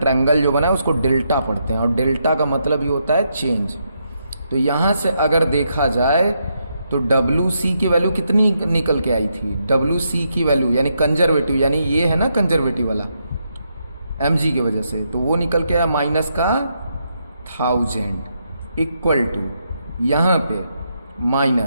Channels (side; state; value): both; inverted; correlation -0.80